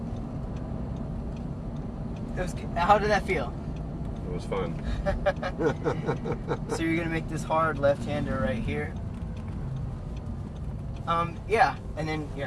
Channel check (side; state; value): both; identical; correlation 1.00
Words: How did that feel? It was fun. So you're gonna make this hard left-hander right here. Yeah, and then